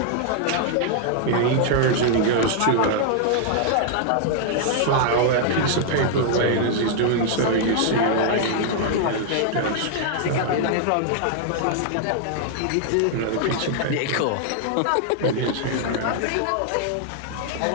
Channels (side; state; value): both; different; correlation -0.01